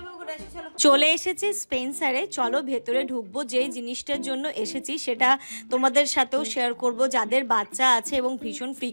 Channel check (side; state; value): both; inverted; correlation -1.00